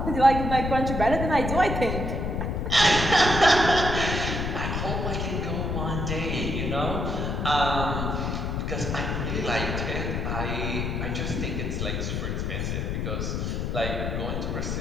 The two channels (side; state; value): left; noise; rumble, 1 dB below the sound